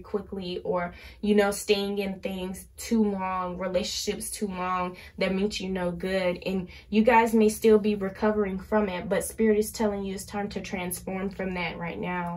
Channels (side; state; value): both; identical; correlation 1.00